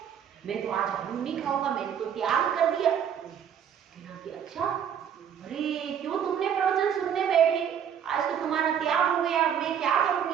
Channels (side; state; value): left; quieter; 8.5 dB